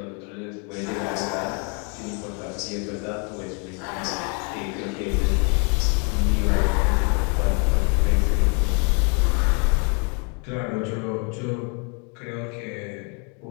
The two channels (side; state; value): right; quieter; 36.4 dB